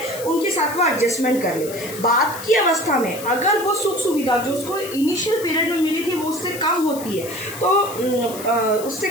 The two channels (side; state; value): left; noise; hiss, 13 dB below the sound